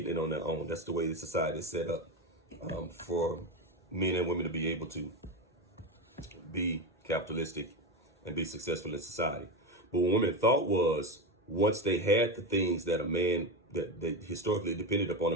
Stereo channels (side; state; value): both; normal; correlation 0.17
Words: it on their own. That's the way the society is set up, for men and women to be able to be capitalistic and be successful in society. But what women thought was, once they had the things that a man, that they historically depended upon